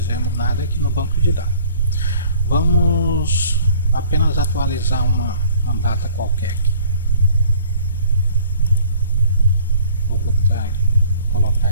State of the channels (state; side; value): inverted; both; correlation -0.53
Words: nada aqui no banco de dados. Vamos apenas atualizar uma data qualquer aqui. Vou colocar